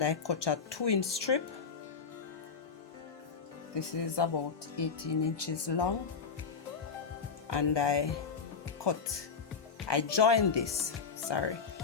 I cut a 2-inch strip. This is about 18 inches long, and I joined this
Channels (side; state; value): right; quieter; 5.7 dB